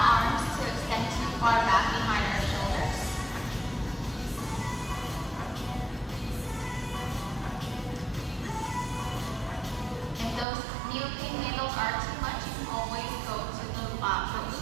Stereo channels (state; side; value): drops out; left; at 10.5 s